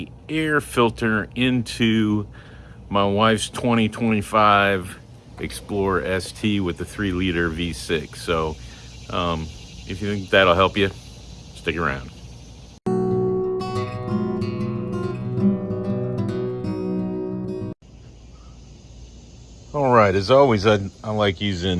air filter into my wife's 2025 Explorer ST with the 3-liter V6. So if you think that'll help you, stick around. All right, as always, I like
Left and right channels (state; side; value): identical; both; correlation 1.00